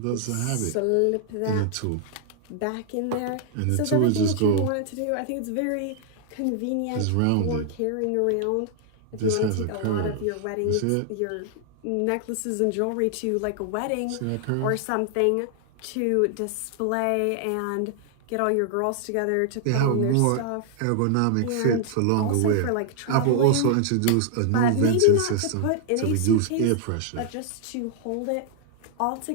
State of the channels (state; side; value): different; both; correlation 0.00